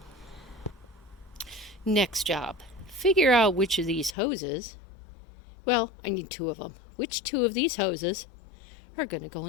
Next job, figure out which of these hoses, well, I need 2 of them. Which 2 of these hoses are going to go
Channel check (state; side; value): drops out; right; at 4.2 s